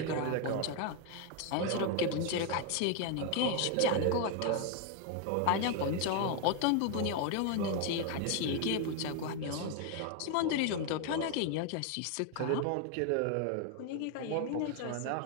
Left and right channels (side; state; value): both; different; correlation 0.01